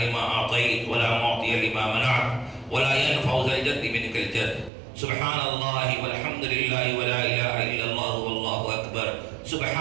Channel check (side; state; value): left; drops out; at 4.7 s